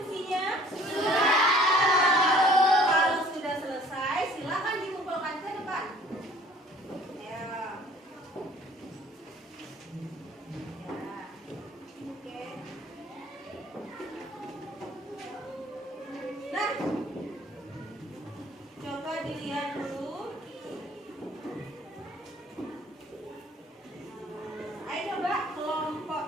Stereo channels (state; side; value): normal; both; correlation 0.54